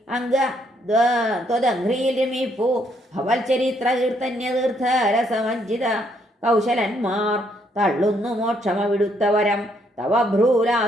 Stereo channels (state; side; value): normal; both; correlation 0.71